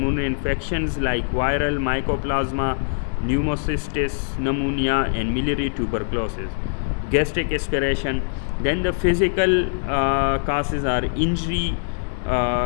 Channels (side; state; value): right; silent; digital silence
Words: infections like viral mycoplasma, pneumocystis, pneumonia and miliary tuberculosis, gastric aspiration. Then the physical causes are injury.